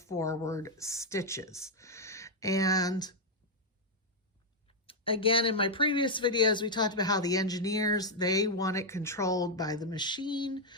stitches. And again, in my previous videos, we talked about how the engineers, they want it controlled by the machine.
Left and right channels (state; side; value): normal; both; correlation -0.01